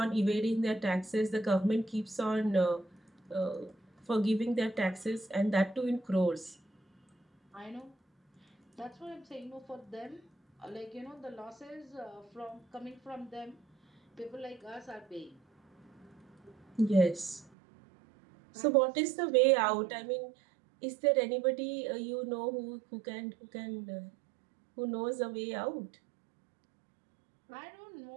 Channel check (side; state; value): left; drops out; at 17.5 s